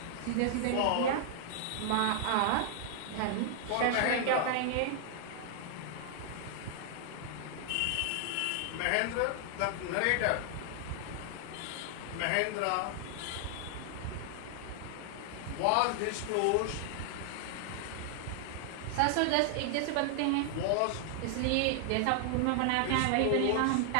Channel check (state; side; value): different; both; correlation 0.00